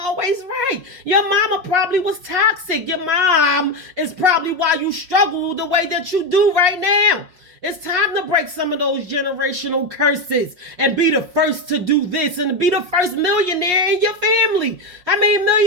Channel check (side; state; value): left; late; 5.6 ms